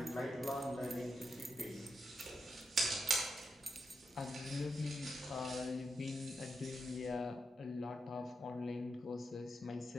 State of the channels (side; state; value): both; normal; correlation 0.85